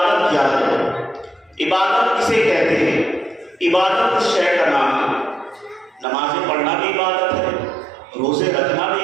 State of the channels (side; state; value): left; drops out; at 6.1 s